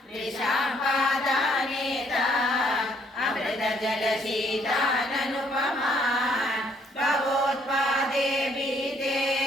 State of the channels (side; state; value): both; normal; correlation 0.67